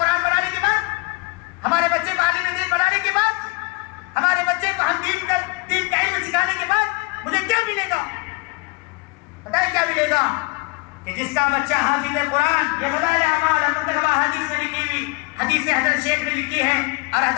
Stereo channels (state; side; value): quieter; right; 27.5 dB